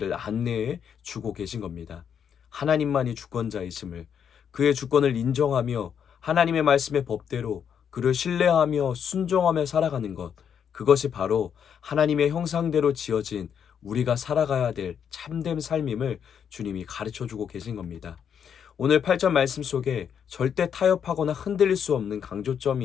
안내해 주고 계신 겁니다. 하나님만이 주권자이심을, 그의 주권을 인정하며 하나님의 말씀의 법대로 그를 신뢰하며 순종하며 살아가는 것, 그것이 바로 하나님의 형상대로 지어진 우리가 살아가야 될 참된 삶임을 주님이 가르쳐 주고 계신 겁니다. 오늘 8절 말씀 속에 절대 타협하거나 흔들릴 수 없는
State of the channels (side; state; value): right; quieter; 7.9 dB